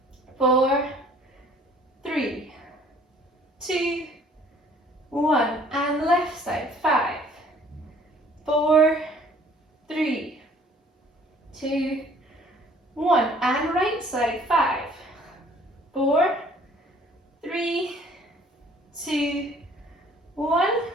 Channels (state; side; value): normal; both; correlation 0.56